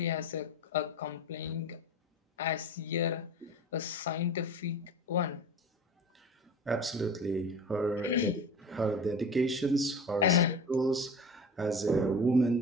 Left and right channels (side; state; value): both; normal; correlation 0.34